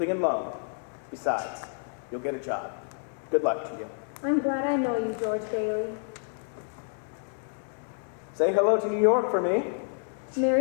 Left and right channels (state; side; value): silent; right; 59 dB below the other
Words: and loan. Besides, you'll get a job. Good luck to you. I'm glad I know you, George Bailey. Say hello to New York for me.